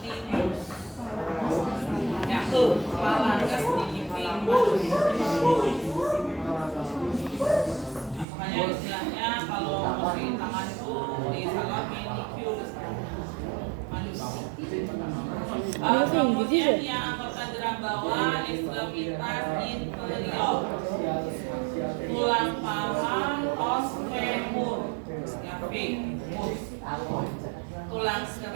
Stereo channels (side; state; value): left; drops out; at 8.2 s